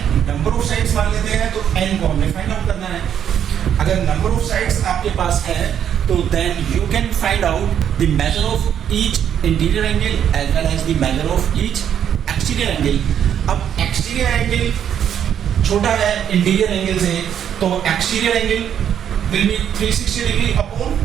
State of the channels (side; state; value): left; quieter; 9.2 dB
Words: नंबर ऑफ साइड्स मान लेते हैं तो n को हमें फाइंड आउट करना है. अगर नंबर ऑफ साइड्स आपके पास है तो then you can find out the measure of each interior angle as well as the measure of each exterior angle. अब एक्सटीरियर एंगल छोटा है इंटीरियर एंगल से, तो exterior angle will be 360 degree upon